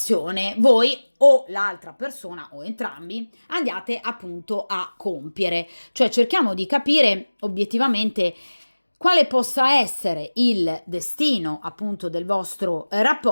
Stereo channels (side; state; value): both; inverted; correlation -1.00